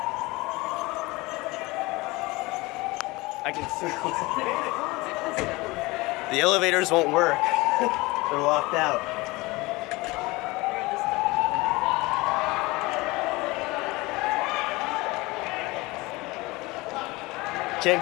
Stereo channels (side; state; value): right; quieter; 22.5 dB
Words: I can see. The elevators won't work. They're locked out. Can't